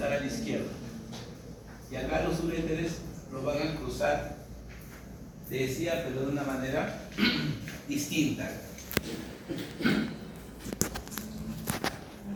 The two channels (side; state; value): both; identical; correlation 1.00